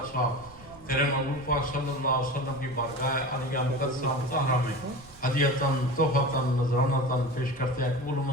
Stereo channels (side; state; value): right; noise; rumble, 22 dB below the sound